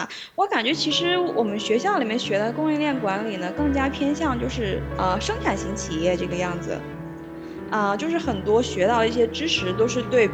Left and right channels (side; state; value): both; identical; correlation 1.00